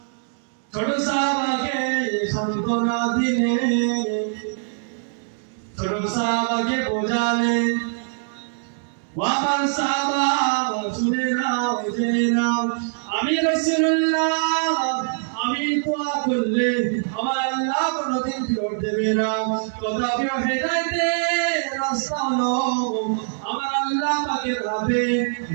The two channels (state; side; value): silent; left; digital silence